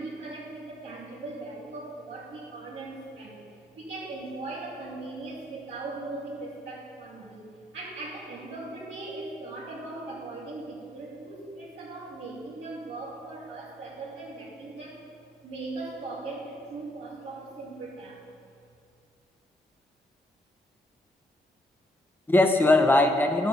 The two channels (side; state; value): both; normal; correlation 0.72